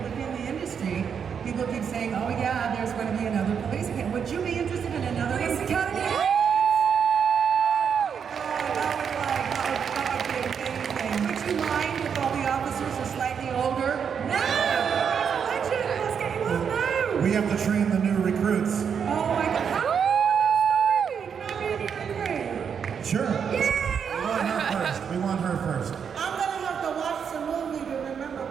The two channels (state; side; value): quieter; left; 7.1 dB